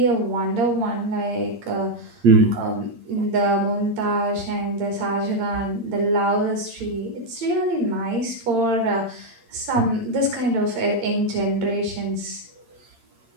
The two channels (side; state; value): left; late; 8.7 ms